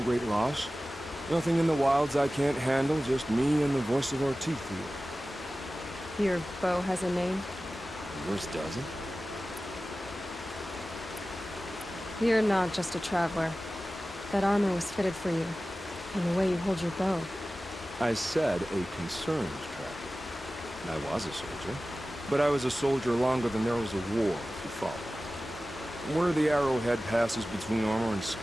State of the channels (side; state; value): both; normal; correlation 0.96